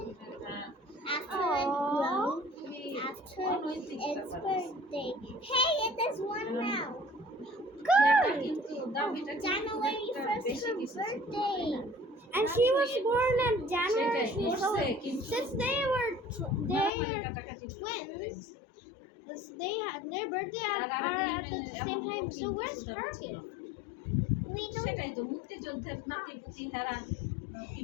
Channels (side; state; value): right; drops out; at 16.9 s